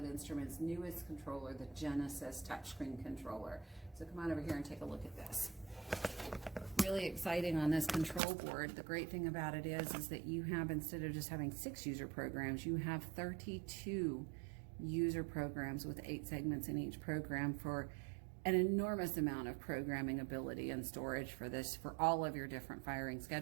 Instruments' newest controller, the Genesis touchscreen controller. So come on over here and take a look at this. Really exciting on this control board. The great thing about it is that you have, instead of just having 6 user programs, you have 32 user programs with 8 segments in each program for an enormous amount of programming ability and storage for this, for all of your different firing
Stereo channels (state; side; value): drops out; left; at 8.2 s